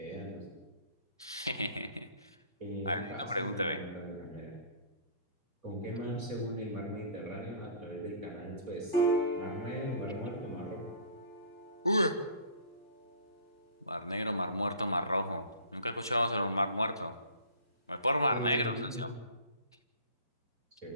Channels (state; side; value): inverted; both; correlation -0.46